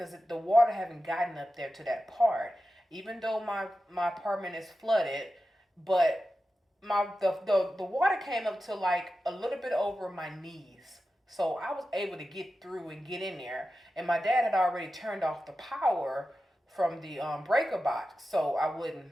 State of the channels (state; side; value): normal; both; correlation 0.92